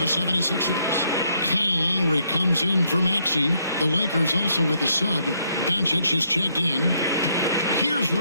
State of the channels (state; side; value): inverted; both; correlation -0.72